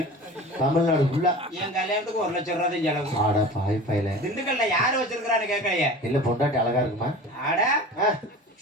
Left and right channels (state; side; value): normal; both; correlation 0.36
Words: தமிழ்நாடு ஃபுல்லா. என் கல்யாணத்துக்கு 1 லட்சம் ரூபாய் தான் செலவு. ஆடா பாய் பையல. திண்டுக்கல்ல யாரு வச்சிருக்கான்னு கேட்கலையே. இல்ல பொண்டாட்டி அழகா இருக்குமா? ஆடா